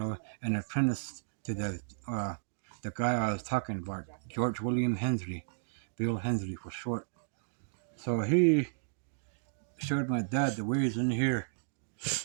apprentice to the guy I was talking about, George William Hensley, Bill Hensley for short. So he showed my dad the ways in here,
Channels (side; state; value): left; silent; digital silence